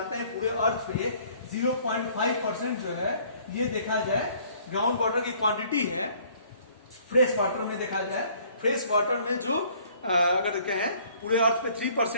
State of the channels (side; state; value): both; inverted; correlation -0.58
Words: हैं पूरे अर्थ पे 0.5% जो है ये देखा जाए ग्राउंड वाटर की क्वांटिटी है। फ्रेश वाटर में देखा जाए, फ्रेश वाटर में जो अगर कहें पूरे अर्थ पे